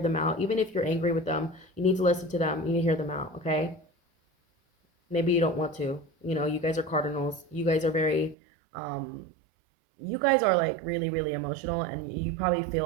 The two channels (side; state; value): left; drops out; at 8.3 s